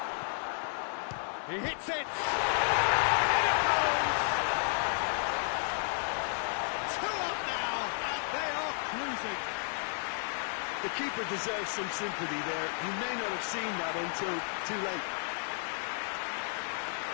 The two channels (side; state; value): right; silent; 56 dB below the other